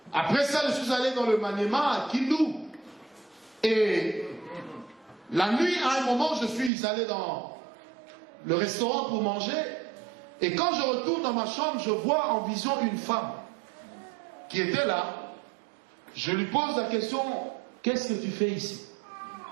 Après ça, je suis allé dans le Maniema, à Kindu. Et la nuit, à un moment, je suis allé dans le restaurant pour manger. Et quand je retourne dans ma chambre, je vois en vision une femme qui était là. Je lui pose la question, qu'est-ce que tu fais ici?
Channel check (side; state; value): left; drops out; at 6.7 s